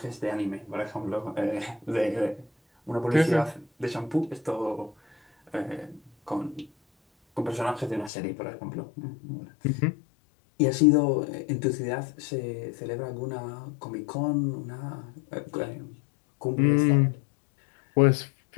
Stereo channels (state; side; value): drops out; right; at 8.1 s